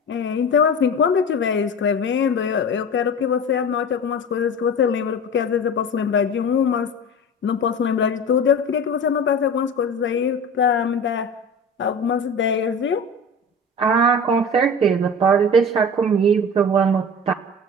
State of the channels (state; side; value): normal; both; correlation 0.33